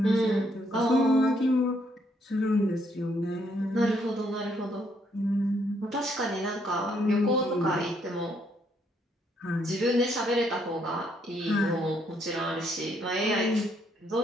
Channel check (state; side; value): normal; both; correlation 0.72